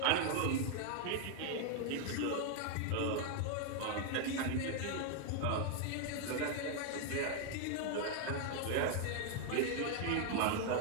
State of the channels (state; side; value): different; both; correlation 0.00